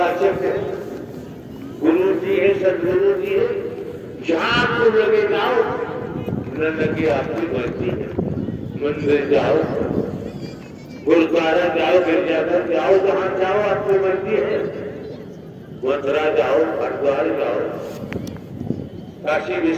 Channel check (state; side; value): identical; both; correlation 1.00